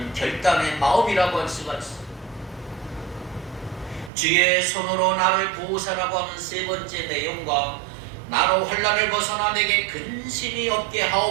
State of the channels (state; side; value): drops out; left; at 4.1 s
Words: 결단의 마음이라고 할 수가 있습니다. 주의 손으로 나를 보호사라고 하는 세 번째 내용과 나로 환난을 벗어나 내게 근심이 없게